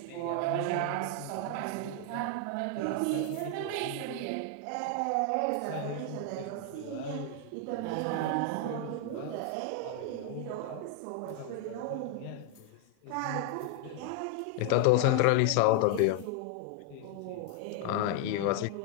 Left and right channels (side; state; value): both; different; correlation 0.00